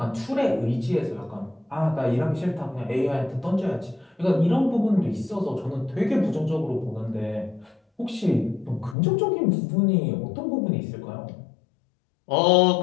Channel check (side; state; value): right; drops out; at 9.0 s